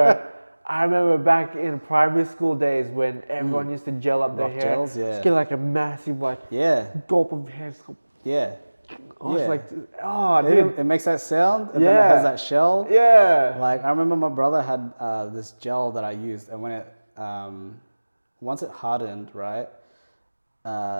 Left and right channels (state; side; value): inverted; both; correlation -1.00